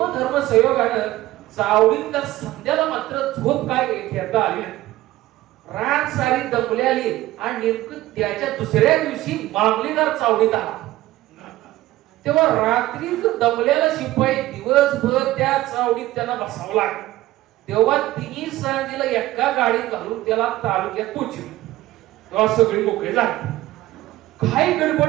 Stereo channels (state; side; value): quieter; left; 16.3 dB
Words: संयोगानं चावडीत तर संध्याला मात्र झोप काय घेता आली. रात सारी दमल्याली आणि नेमकं त्याच्या दुसऱ्या दिवशी मामलेदार चावडीत आला. तेव्हा रात्री दमल्याला शिपाई दिवसभर त्या चावडीत त्यांना बसावं लागलं. तेव्हा तिन्ही सांजेला एका गाडीत घालून त्याला तालुक्यात पोहोचली. तेव्हा सगळी मोकळे झाले. काही